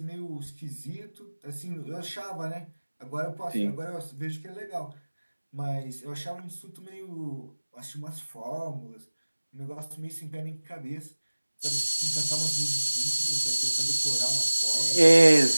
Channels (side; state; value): both; inverted; correlation -1.00